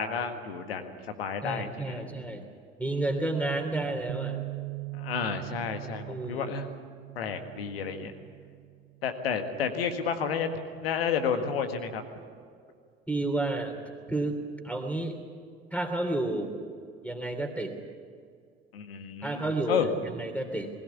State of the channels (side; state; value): both; normal; correlation 0.46